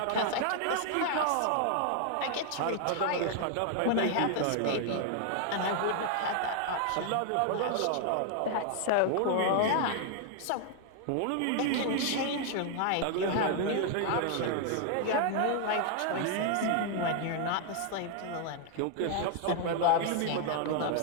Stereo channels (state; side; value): different; both; correlation 0.00